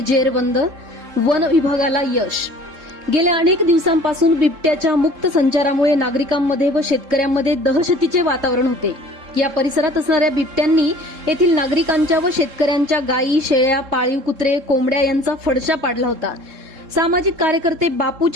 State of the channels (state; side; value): late; left; 3.7 ms